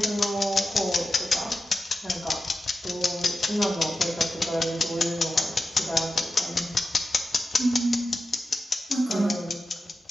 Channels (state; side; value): normal; both; correlation 0.91